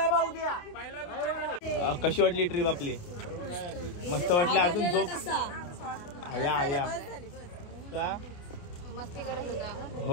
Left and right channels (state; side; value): late; right; 29 ms